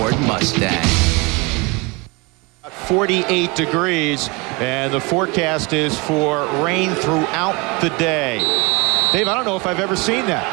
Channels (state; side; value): quieter; left; 27.1 dB